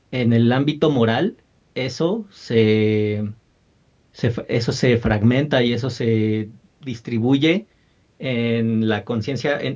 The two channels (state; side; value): identical; both; correlation 1.00